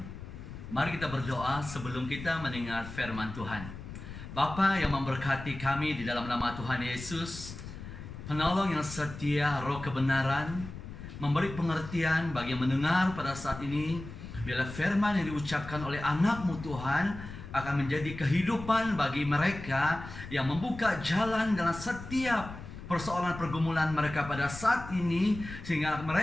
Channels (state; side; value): noise; left; rumble, 12 dB below the sound